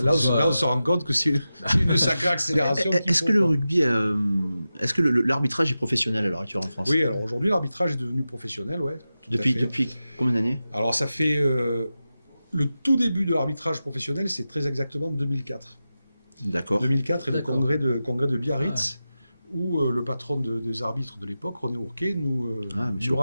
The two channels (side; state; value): both; inverted; correlation -0.92